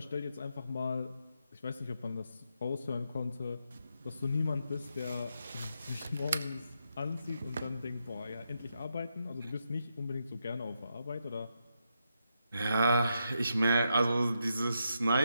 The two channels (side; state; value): both; inverted; correlation -0.83